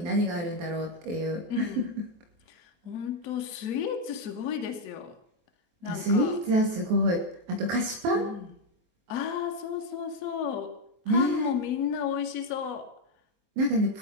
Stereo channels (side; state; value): left; late; 23 ms